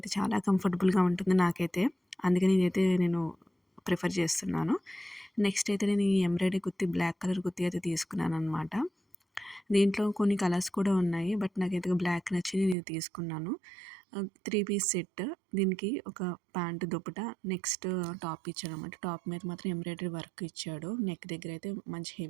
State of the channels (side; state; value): left; drops out; at 12.8 s